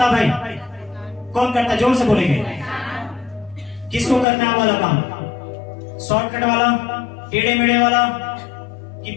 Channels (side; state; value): right; drops out; at 4.2 s